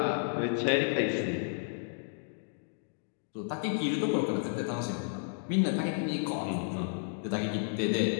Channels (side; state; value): right; silent; digital silence